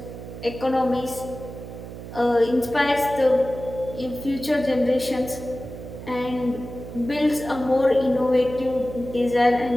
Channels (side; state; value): right; noise; hum, 12 dB below the sound